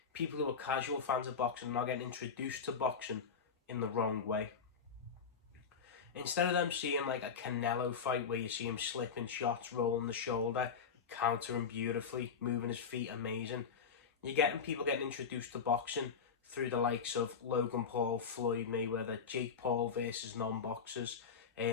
people who are casual fans of boxing are now getting introduced to boxing in the wrong way. Instead of them seeing like a Canelo fight where you see him slipping shots, rolling the shoulder, countering beautifully, moving his feet amazing, you're getting people getting introduced to boxing through the likes of Logan Paul, Floyd Mayweather, Jake Paul versus non-boxers,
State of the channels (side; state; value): right; quieter; 6.1 dB